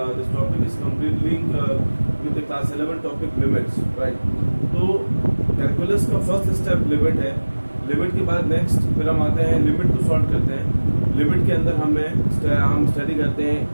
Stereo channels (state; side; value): inverted; both; correlation -1.00